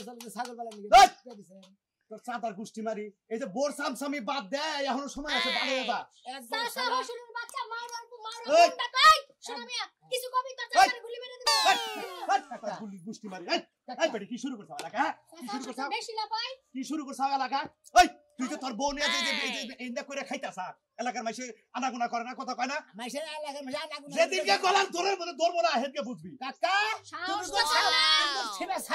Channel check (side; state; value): both; identical; correlation 1.00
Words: চলে ছাগল বালা নিয়ে এই! দিছেন তোর চাতার গুষ্টি মারি এই যে বোর সামসামি বাদ দে এখনো সময় আছে ভালো দাদা একদম সাসা হসুরের বাচ্চা মারো এই! তাই শোনা মিয়া কিছু কবি তোর চাচারে গুলি মেরে দিবি গুলি গুষ্টি মারি এই বেটি কি শুরু করছ এলাকা কি শুরু করছ বেশি লাপাই কি শুরু করছ এলাকা ওই তুই তো তোর বউ নিয়ে যে ইন্দা করে খাইতাছ এলাকার মাইসে আনাগুনা করে না কথা কয় না মাইসের এলাকার মাঝে আনাগুনা যেদিনকে গলার তোরের মধ্যে ধরবো না হেডকে বুঝবি কাকা তুমি তো ছেড়ে